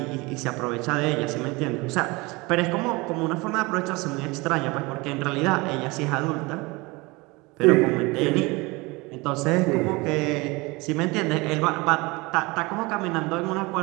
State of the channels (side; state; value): left; quieter; 24.5 dB